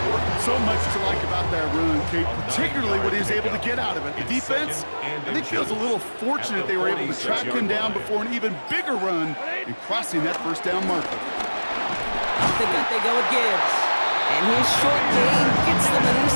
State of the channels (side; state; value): both; inverted; correlation -1.00